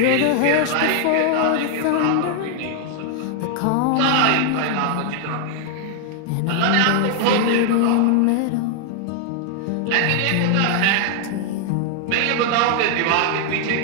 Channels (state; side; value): different; both; correlation 0.00